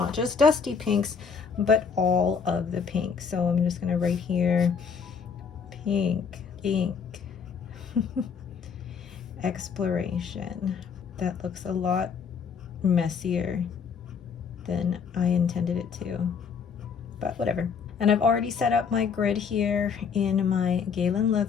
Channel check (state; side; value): quieter; right; 6.2 dB